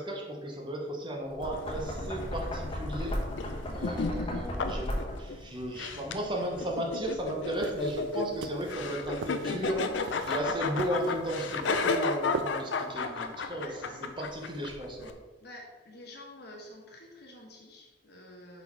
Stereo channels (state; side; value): normal; both; correlation 0.29